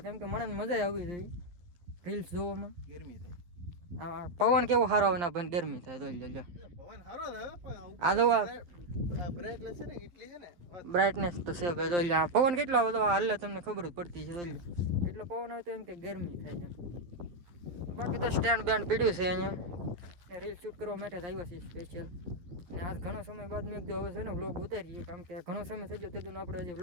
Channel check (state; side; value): late; left; 11 ms